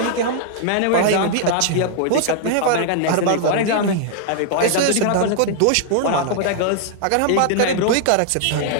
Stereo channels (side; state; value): both; different; correlation -0.01